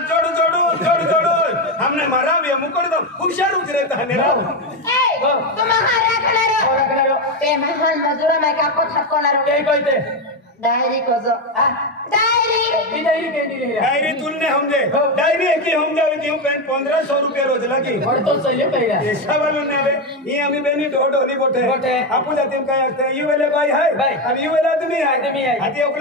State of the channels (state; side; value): normal; both; correlation 0.10